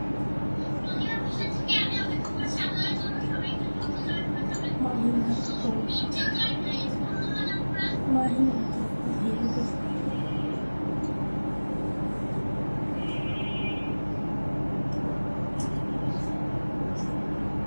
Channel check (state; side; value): inverted; both; correlation -1.00